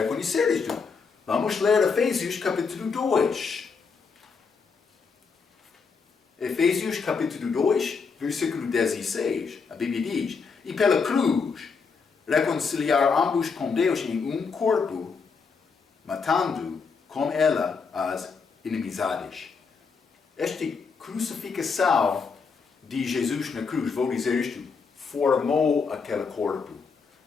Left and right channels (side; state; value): right; quieter; 5.2 dB